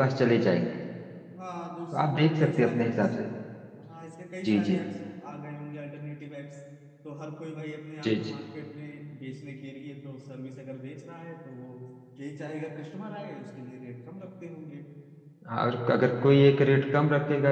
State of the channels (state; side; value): identical; both; correlation 1.00